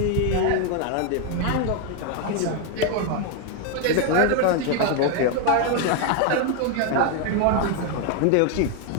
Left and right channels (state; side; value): different; both; correlation 0.01